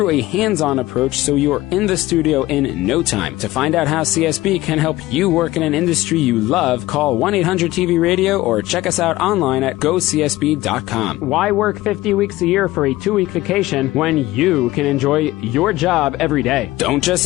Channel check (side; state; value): right; quieter; 17.5 dB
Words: a hands-on approach so you're in the studio in no time. To find out how CSB can help you work in an industry you love, call 1-800-TV-RADIO or check us out online at GoCSB.com. Why work 50 weeks a year for a 2-week vacation when you can enjoy your job every day? Don't just